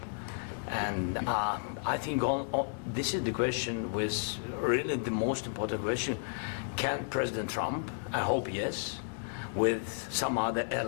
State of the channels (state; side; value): silent; right; digital silence